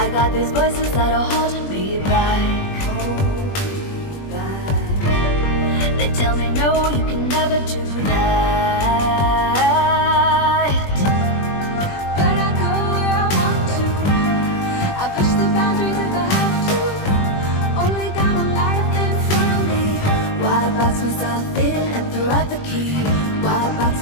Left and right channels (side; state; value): right; late; 20 ms